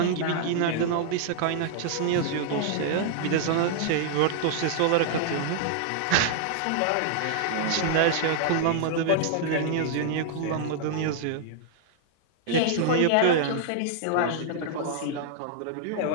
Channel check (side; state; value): both; different; correlation -0.01